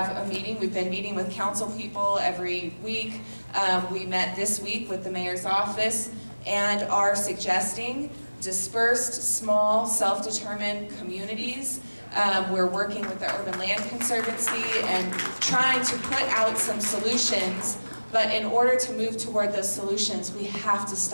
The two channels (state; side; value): inverted; both; correlation -1.00